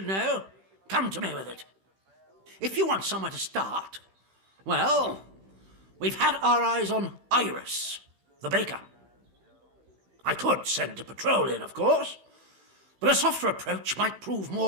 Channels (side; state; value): left; late; 16 ms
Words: know, come to me with it. If you want somewhere to start, well, we've had our eyes on Iris, the baker. I could send a patrol in, of course, but a softer approach might prove